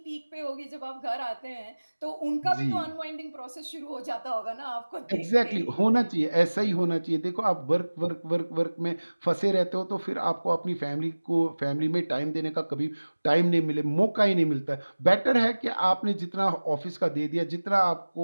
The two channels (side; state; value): both; inverted; correlation -1.00